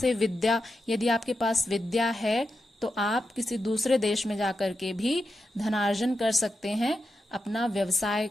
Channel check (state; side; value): normal; both; correlation 0.88